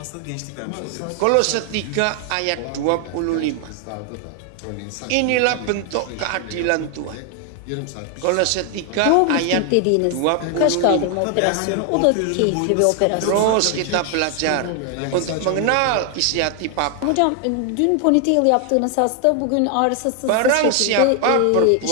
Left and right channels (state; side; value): different; both; correlation 0.00